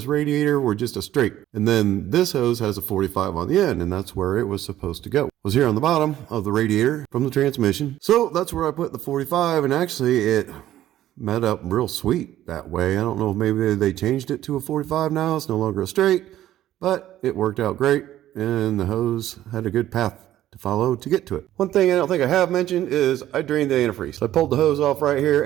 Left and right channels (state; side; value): quieter; left; 13.1 dB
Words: radiator were just a straight. And then this hose has a 45 on the end, and that's where it was supposed to go. It was here on the bottom of the radiator from the transmission. So that's where I put the 45, and actually it met up real sweet that way. I don't know if maybe they changed it to a 45 now. It's no longer a straight, but it worked out great, and the hose had a good path to follow to get to it. One thing I don't think I have mentioned is I drained the antifreeze. So I pulled the hose off right here